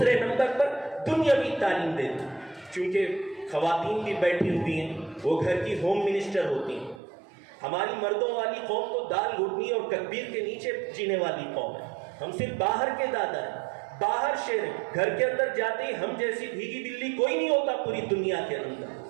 نمبر پر دنیاوی تعلیم دے دیں، چونکہ خواتین بھی بیٹھی ہوئی ہیں، وہ گھر کی ہوم منسٹر ہوتی ہیں۔ ہماری مردوں والی قوم تو دال گھٹنی اور تکبیر کے نیچے جینے والی قوم ہے، ہم صرف باہر کے دادا ہیں، باہر شیر ہیں، گھر کے اندر جاتے ہی ہم جیسی بھیگی بلی کوئی نہیں ہوتا پوری دنیا کے اندر۔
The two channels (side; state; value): left; drops out; at 7.0 s